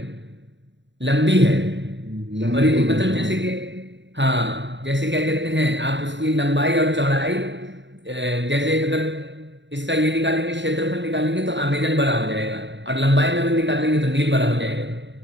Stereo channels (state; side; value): late; left; 0.53 ms